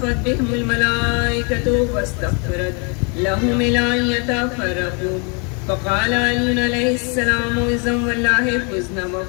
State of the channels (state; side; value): quieter; right; 35.0 dB